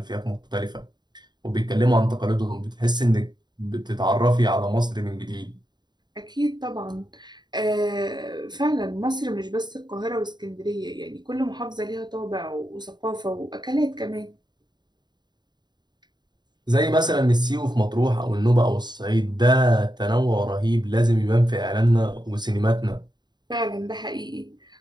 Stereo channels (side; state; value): left; late; 0.21 ms